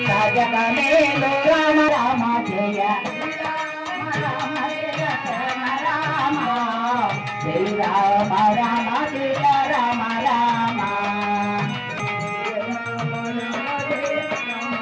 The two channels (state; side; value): identical; both; correlation 1.00